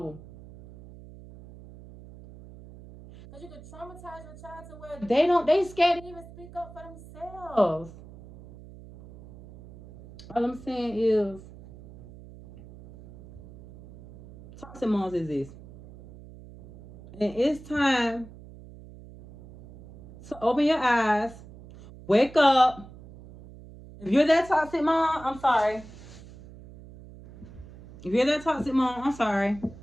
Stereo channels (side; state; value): right; noise; hum, 18 dB below the sound